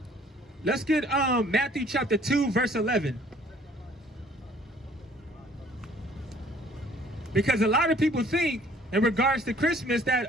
Let's get Matthew chapter 2, verse 11. Because a lot of people think in regards to Christmas that,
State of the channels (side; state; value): both; normal; correlation 0.57